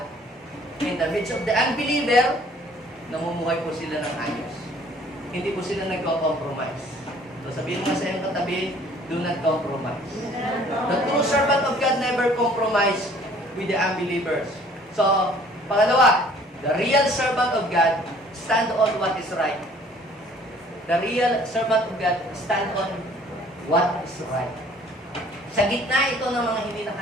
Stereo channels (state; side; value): normal; both; correlation 0.55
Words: in the midst of the unbeliever, namumuhay po sila ng ayos. Hindi po sila nagko-compromise. So, sabihin mo sa iyong katabi, do not compromise. The true servant of God never compromise with the unbelievers. So, pangalawa, the real servant of God stand on what is right. The real servant of God stand on what is right. Sa gitna ito ng mga hindi